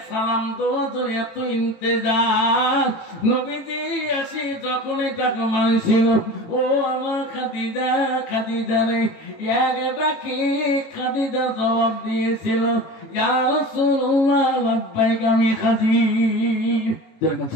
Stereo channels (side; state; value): right; late; 18 ms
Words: সালাম দেওয়ার জন্য এত ইন্তেজার। নবীজি আসি যখন এটাকে মানছিল, ও আমার খাদিজা, খাদিজা রে, এক ডাকি খাদিজা জবাব দিয়েছিল, ইয়া রাসূলুল্লাহ লাব্বাইক, আমি হাজির।